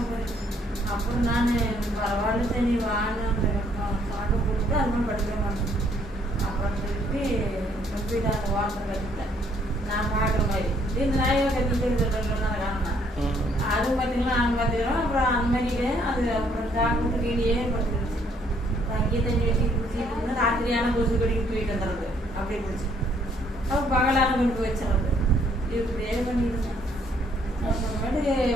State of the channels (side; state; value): both; normal; correlation 0.66